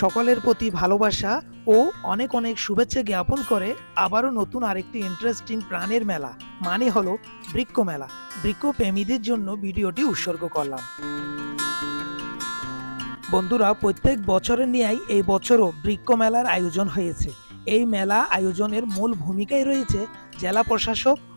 প্রতি ভালোবাসা ও অনেক অনেক শুভেচ্ছা জ্ঞাপন করে আবারও নতুন আরেকটি ইন্টারেস্টিং প্রাণের মেলা মানে হলো বৃক্ষ মেলা। বৃক্ষ প্রেমীদের জন্য ভিডিওটি উৎসর্গ করলাম। বন্ধুরা, প্রত্যেক বছরের ন্যায় এই বছরও বৃক্ষ মেলার আয়োজন হয়েছে। এই মেলা আয়োজনের মূল ভূমিকায় রয়েছে জেলা প্রশাসক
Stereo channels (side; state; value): both; inverted; correlation -1.00